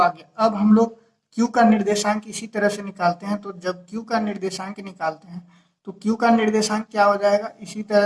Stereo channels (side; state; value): both; identical; correlation 1.00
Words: गया। अब हम लोग q का निर्देशांक इसी तरह से निकालते हैं। तो जब q का निर्देशांक निकालते हैं तो q का निर्देशांक क्या हो जाएगा, इसी